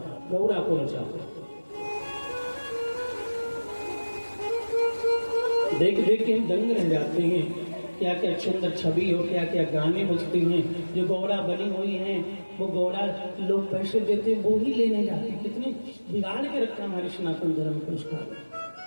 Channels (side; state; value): both; inverted; correlation -1.00